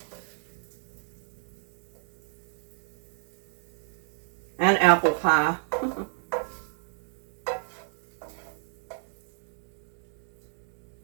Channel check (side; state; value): left; silent; 57 dB below the other